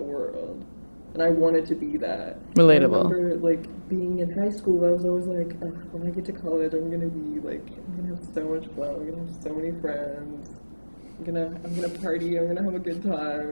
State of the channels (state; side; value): inverted; both; correlation -1.00